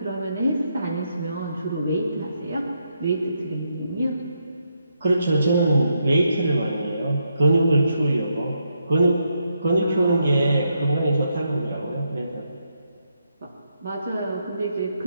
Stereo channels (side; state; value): both; inverted; correlation -0.80